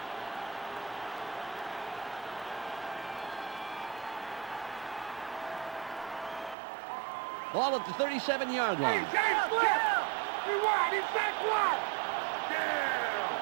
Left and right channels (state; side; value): drops out; left; at 6.6 s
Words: Ball at the 37-yard line. James Flip! Rewind, inside one! Down!